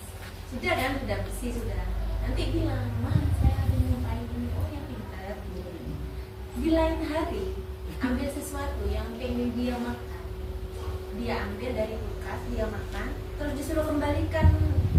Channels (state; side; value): identical; both; correlation 1.00